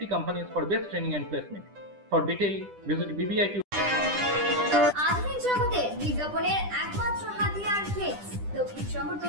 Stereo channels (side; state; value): left; late; 10 ms